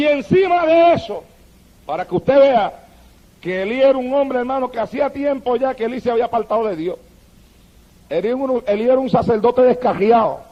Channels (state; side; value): identical; both; correlation 1.00